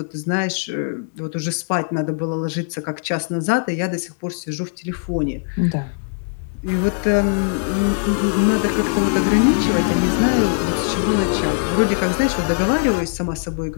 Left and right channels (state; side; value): silent; right; digital silence